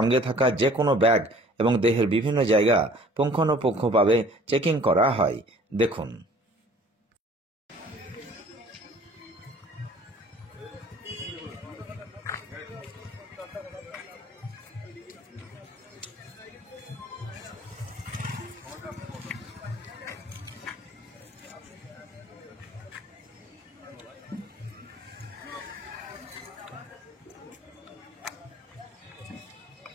থাকা যে কোনো ব্যাগ এবং দেহের বিভিন্ন জায়গা পুঙ্খানুপুঙ্খভাবে চেকিং করা হয়। দেখুন।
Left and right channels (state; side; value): normal; both; correlation 0.51